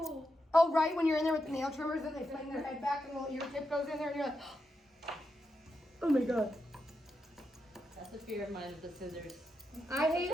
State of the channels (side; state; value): both; normal; correlation 0.86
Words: Oh, right, when you're in there with the nail trimmers and they fling their head back and the little ear tip goes in there and you're like, oh my god. That's a fear of mine with the scissors. I